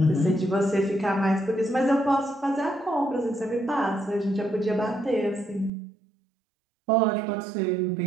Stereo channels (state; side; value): drops out; left; at 5.7 s